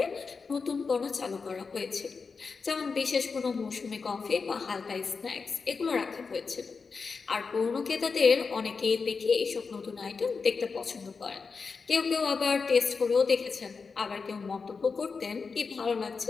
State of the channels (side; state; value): right; quieter; 4.9 dB